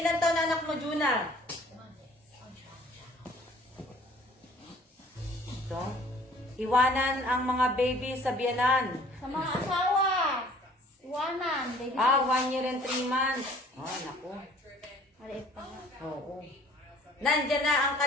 Ilan taon na anak mo, Juna? Ito. Iwanan ang mga baby sa biyanan. Sa mga asawa. Iwanan. Baby. 1 year and 3 months. Oh, naku. Maliit pa nga. Oo. Nandyan na ang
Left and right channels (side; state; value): both; normal; correlation 0.53